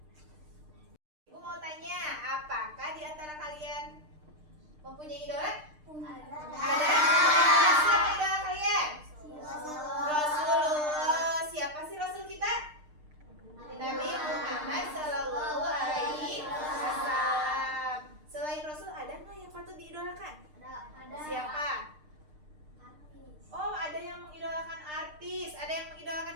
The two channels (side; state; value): left; late; 6.6 ms